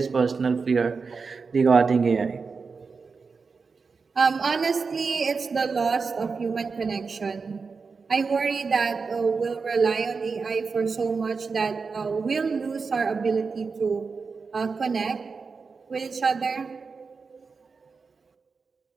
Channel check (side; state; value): left; quieter; 4.9 dB